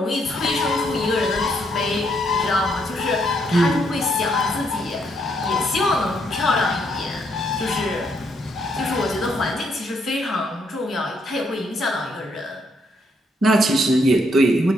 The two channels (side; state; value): both; normal; correlation 0.74